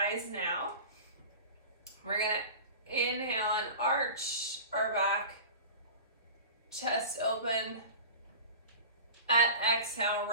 now. We're going to inhale and arch our back. Chest open. At exhale,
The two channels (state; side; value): inverted; both; correlation -0.36